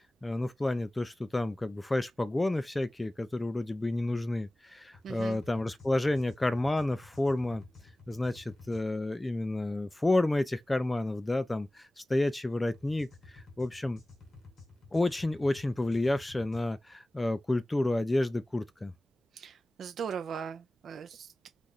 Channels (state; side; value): normal; both; correlation 0.97